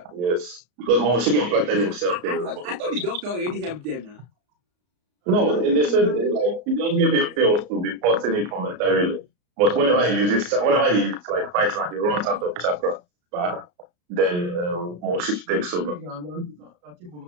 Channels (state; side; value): late; left; 34 ms